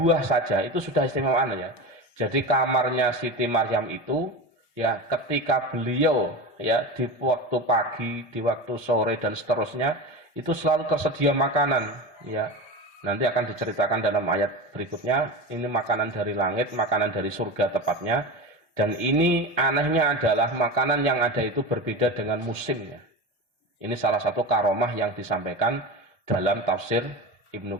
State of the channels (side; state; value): both; normal; correlation 0.25